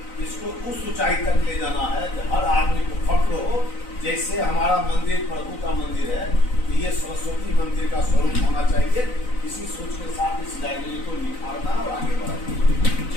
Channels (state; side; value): late; right; 4.0 ms